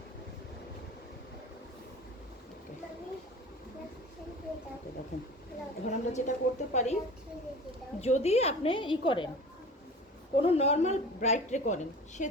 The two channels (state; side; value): normal; both; correlation 0.39